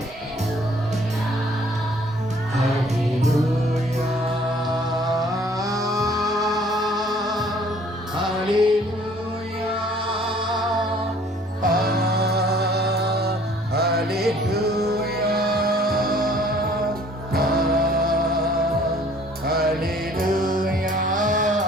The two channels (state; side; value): normal; both; correlation 0.56